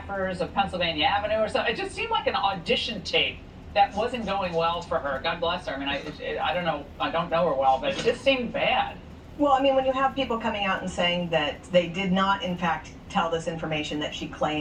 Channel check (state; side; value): identical; both; correlation 1.00